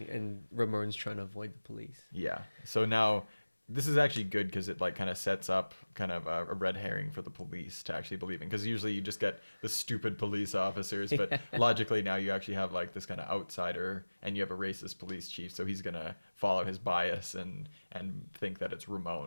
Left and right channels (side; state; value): both; inverted; correlation -1.00